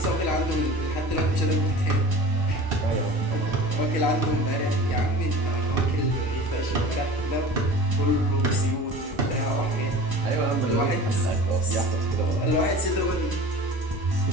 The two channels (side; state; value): both; normal; correlation 0.38